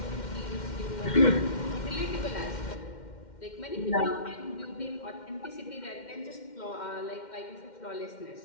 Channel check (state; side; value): late; right; 2.1 ms